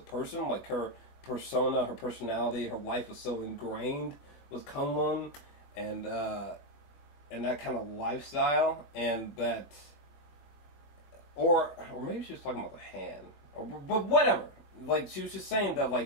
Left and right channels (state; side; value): late; right; 21 ms